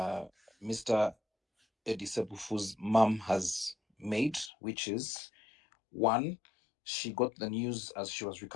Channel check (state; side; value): drops out; right; at 4.5 s